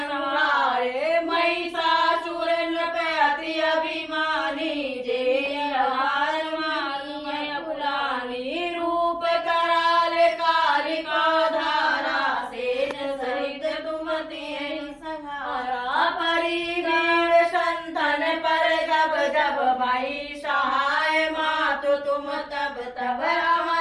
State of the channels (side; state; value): both; identical; correlation 1.00